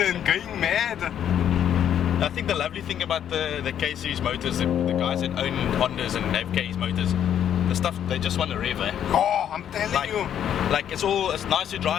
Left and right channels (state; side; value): quieter; right; 9.7 dB